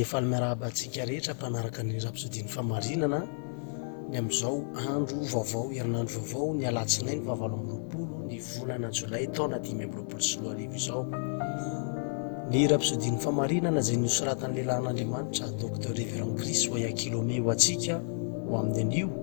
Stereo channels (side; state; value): right; silent; 57 dB below the other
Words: efa miarahaba-antsika rehetra mpanaraka ny rapsodiny famarinana ny amin'izao andro vaovao, herinandro vaovao, ny alatsinainy 20 ny volana jolay taona 2024 izao. Ny rapsodiny famarinana izay nosoratan'ny lehilahin'Andriamanitra Dr Révérend Chris Oyakhilome ho antsika ho amin'ny anio